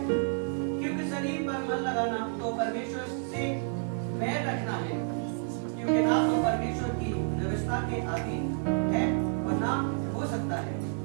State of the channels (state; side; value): silent; left; 58 dB below the other